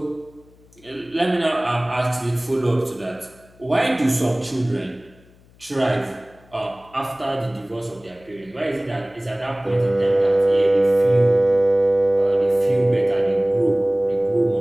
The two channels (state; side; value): noise; left; hum, 28 dB below the sound